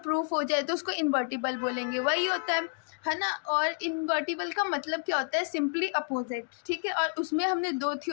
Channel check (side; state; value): right; quieter; 37.3 dB